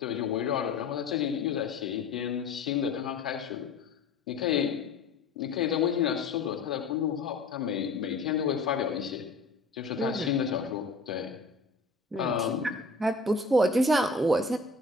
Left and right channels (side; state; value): right; quieter; 3.6 dB